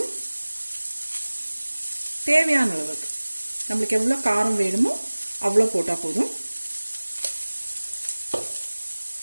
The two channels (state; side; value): inverted; both; correlation -1.00